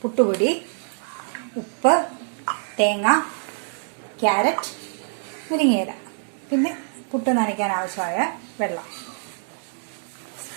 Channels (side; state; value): left; silent; digital silence